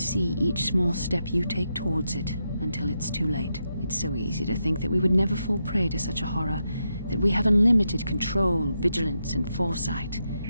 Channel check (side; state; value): both; inverted; correlation -0.85